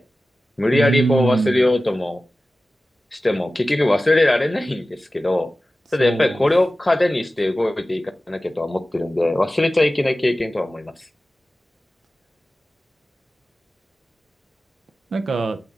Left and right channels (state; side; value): normal; both; correlation 0.95